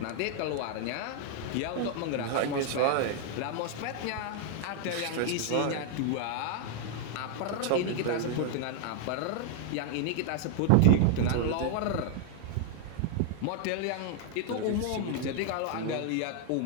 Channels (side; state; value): both; different; correlation 0.00